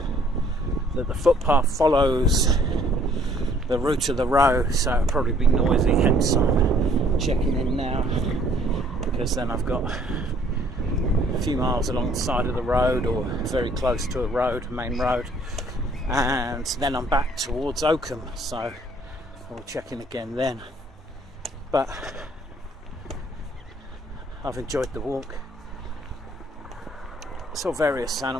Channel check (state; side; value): normal; both; correlation 0.60